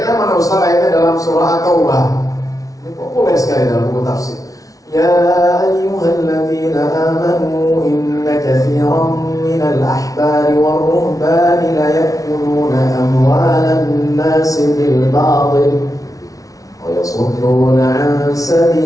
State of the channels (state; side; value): late; right; 0.17 ms